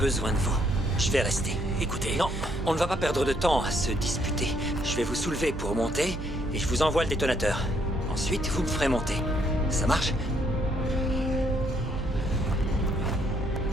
de vous. Je vais rester. écoutez... Non, on ne va pas perdre de temps à se disputer. Je vais vous soulever pour monter, et je vous envoie le détonateur. Ensuite, vous me ferez monter. Ça marche?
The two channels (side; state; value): right; noise; hum, 8 dB below the sound